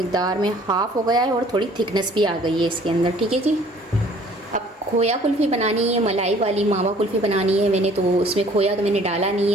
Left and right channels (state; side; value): normal; both; correlation 0.55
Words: में हाफ़ हो गया है और थोड़ी थिकनेस भी आ गई है इसके अंदर। ठीक है जी। अब खोया कुल्फ़ी बनानी है, मलाई वाली मावा कुल्फ़ी बनानी है मैंने, तो उसमें खोया तो मैंने डाला नहीं